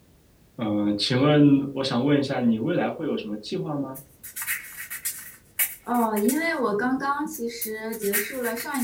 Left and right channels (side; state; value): both; identical; correlation 1.00